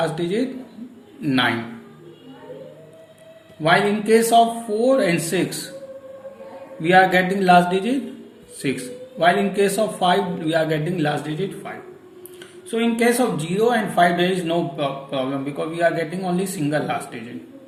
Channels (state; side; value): identical; both; correlation 1.00